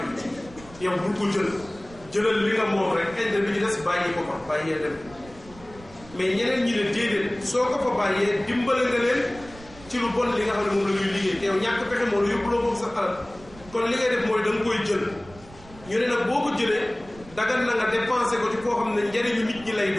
bi yow bul ko jëlal li nga moom rek intérêt bi ci des bàyyi ko fa bàyyee dem mais ñeneen ñi ne déedéet soo ko fa bàyyee dimbale nga leen ci lu bon li nga xam ne moom la ñuy liggéey te yow ñàkk pexe moo la yóbbuloo boobu sa alal kon li ngay def mooy da nga koy jël ñu ne nag boo ko jëlee dagan na nga dépensé ko ci koo xam ne njëriñu nit ñi lay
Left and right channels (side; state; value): right; noise; rumble, 21 dB below the sound